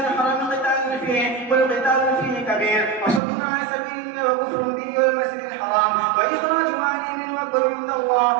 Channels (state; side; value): drops out; left; at 3.2 s